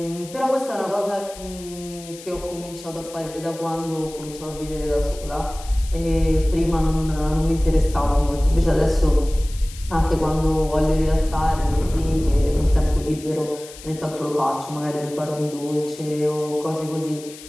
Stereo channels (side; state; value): left; noise; hiss, 17 dB below the sound